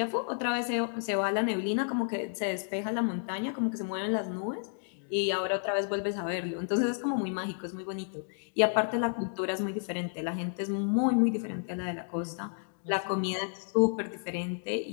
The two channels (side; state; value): right; silent; digital silence